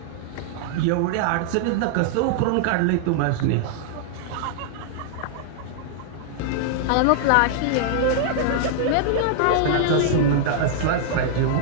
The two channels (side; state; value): both; different; correlation -0.01